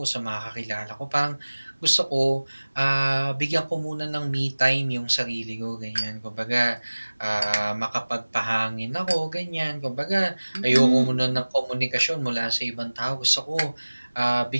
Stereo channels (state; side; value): inverted; both; correlation -1.00